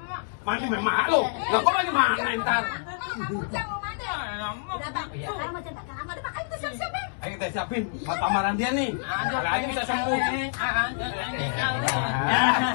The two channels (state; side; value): silent; right; digital silence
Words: Mandi memang lu. Lah kok lagi makan ntar? Kamu ujang mau mana? Udah bang, sekarang mau centang kamu ada makanya kita siap-siap Bang. Ayo kita siapin buat lamaran dia nih. Kayaknya bisa sembuh.